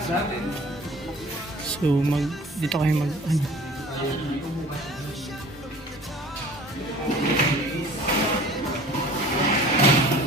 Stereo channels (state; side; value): normal; both; correlation 0.46